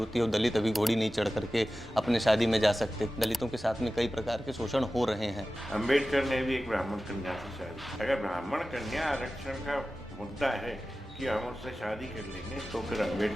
है और दलित अभी घोड़ी नहीं चढ़ करके अपने शादी में जा सकते। दलितों के साथ में कई प्रकार के शोषण हो रहे हैं। अंबेडकर ने भी एक ब्राह्मण कन्या से शादी। अगर ब्राह्मण कन्या आरक्षण का मुद्दा है कि हम उससे शादी कर लेंगे, तो फिर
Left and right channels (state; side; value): normal; both; correlation 0.95